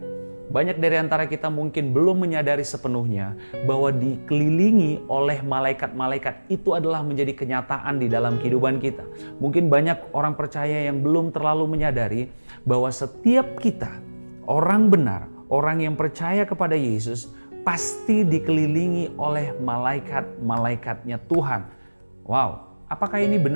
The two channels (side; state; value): both; inverted; correlation -1.00